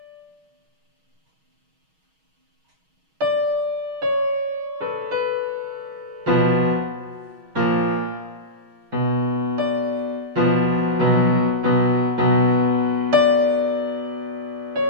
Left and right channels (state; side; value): late; left; 6.3 ms